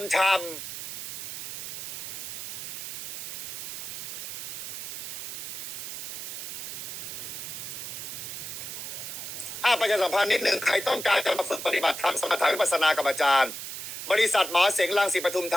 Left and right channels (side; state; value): right; noise; hiss, 6 dB below the sound